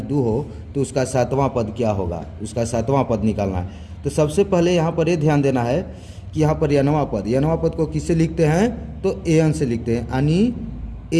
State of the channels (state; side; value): identical; both; correlation 1.00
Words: हो तो उसका 7वां पद क्या होगा, उसका 7वां पद निकालना है। तो सबसे पहले यहाँ पर ये ध्यान देना है कि यहाँ पर n वां पद को किससे लिखते हैं तो an से लिखते हैं, यानी